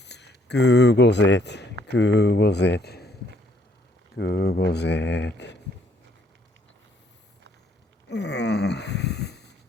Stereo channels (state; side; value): normal; both; correlation 0.67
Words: Googles it. Googles it. Googles it.